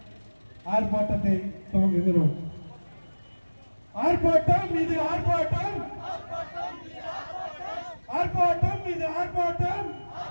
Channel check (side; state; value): both; inverted; correlation -1.00